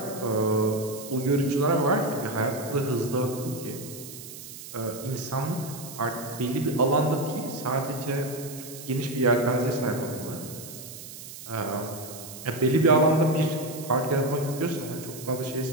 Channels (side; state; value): right; noise; hiss, 13 dB below the sound